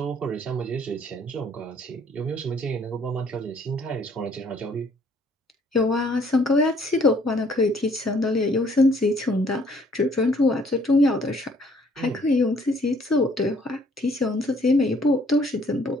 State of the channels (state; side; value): normal; both; correlation 0.62